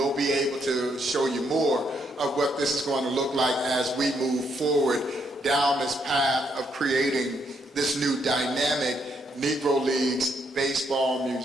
be able to show you more of what this is going to look like as we move forward down this path of creating this new dynamic Negro Leagues Baseball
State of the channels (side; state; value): both; normal; correlation 0.75